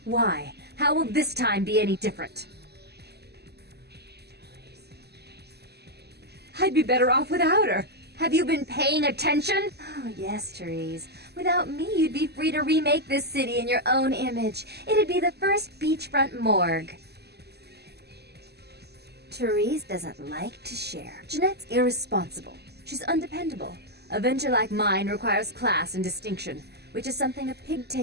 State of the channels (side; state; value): left; late; 0.47 ms